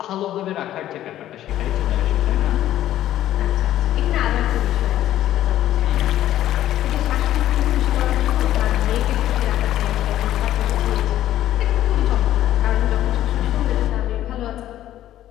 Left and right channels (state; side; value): quieter; right; 12.8 dB